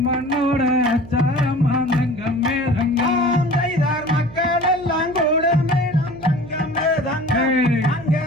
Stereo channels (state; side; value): noise; right; hum, 18 dB below the sound